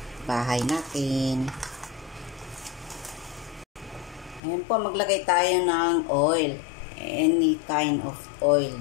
bahay natin. Ayan po, maglagay tayo ng oil. Any kind of oil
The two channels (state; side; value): drops out; right; at 4.4 s